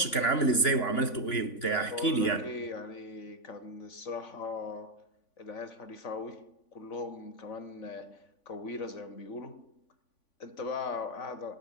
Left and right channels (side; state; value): right; late; 3.5 ms